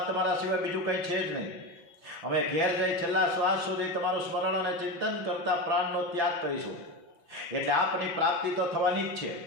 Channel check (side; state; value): left; late; 6.0 ms